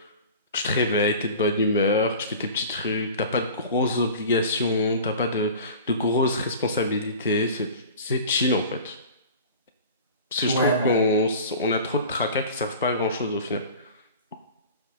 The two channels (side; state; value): both; inverted; correlation -0.39